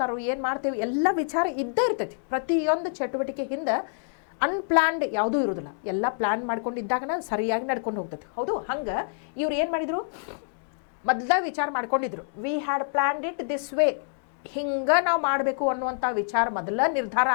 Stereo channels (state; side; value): silent; right; digital silence